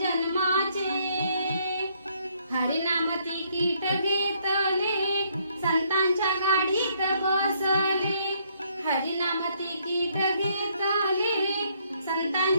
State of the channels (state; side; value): inverted; both; correlation -0.68